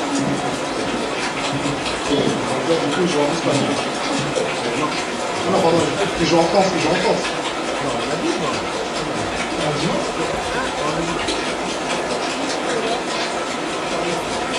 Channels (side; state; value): both; identical; correlation 1.00